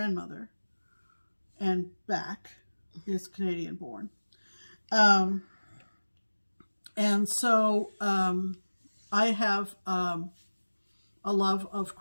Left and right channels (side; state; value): both; inverted; correlation -1.00